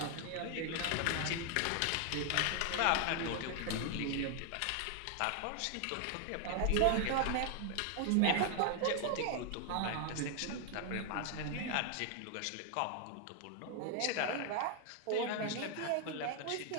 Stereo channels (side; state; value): both; different; correlation 0.00